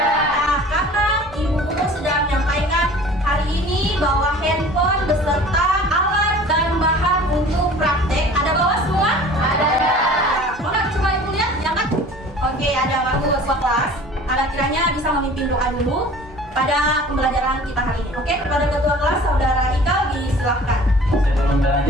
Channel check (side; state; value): both; normal; correlation 0.46